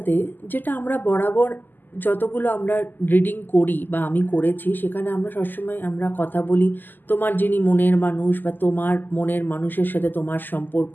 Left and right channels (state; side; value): late; right; 0.089 ms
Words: যেটা আমরা বরাবর যতগুলো আমরা রিডিং করি বা আমি করেছি, সেখানে আমরা সবসময় আমরা কথা বলি তোমার যিনি মনের মানুষ বা তোমার মনের মানুষের সাথে তোমার সম্পর্ক,